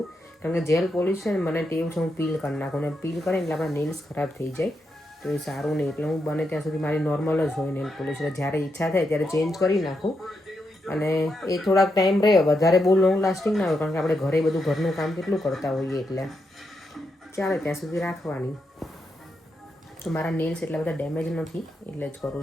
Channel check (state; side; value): normal; both; correlation 0.83